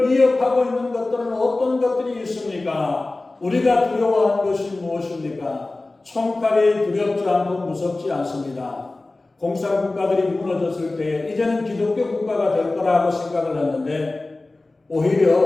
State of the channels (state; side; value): quieter; right; 3.1 dB